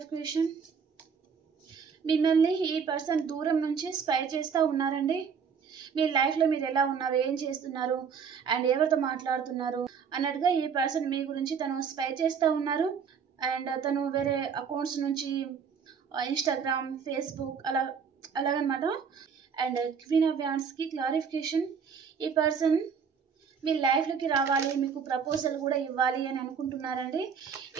మిమ్మల్ని ఈ పర్సన్ దూరం నుంచి స్పై చేస్తూ ఉన్నారండి. మీ లైఫ్లో మీరు ఎలా ఉన్నారు, ఏం చేస్తున్నారు అండ్ ఎవరితో మాట్లాడుతున్నారు అన్నట్టుగా ఈ పర్సన్ మీ గురించి తను స్పై చేస్తూ ఉన్నారు. అండ్ తను వేరే అకౌంట్స్ నుంచి ఇన్స్టాగ్రామ్, ఫేస్బుక్ అలాగనమాట. అండ్ క్వీన్ ఆఫ్ వ్యాండ్స్కి క్లారిఫికేషన్. ఈ పర్సన్ మీ లైఫ్లోకి రావాలి, మీకు ప్రపోజల్ కూడా ఇవ్వాలి అని అనుకుంటున్నారండి.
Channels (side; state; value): left; quieter; 6.5 dB